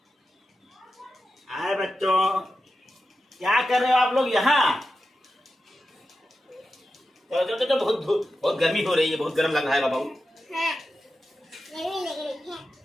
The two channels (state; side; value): normal; both; correlation 0.91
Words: बच्चों, क्या कर रहे हो आप लोग यहाँ? तो बहुत गर्मी हो रही है, बहुत गर्म लग रहा है बाबू।